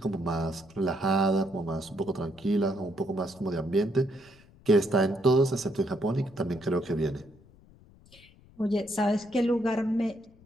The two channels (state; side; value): noise; left; rumble, 26 dB below the sound